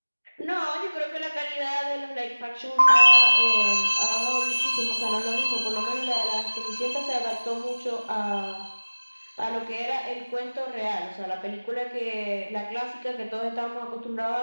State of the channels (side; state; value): both; inverted; correlation -1.00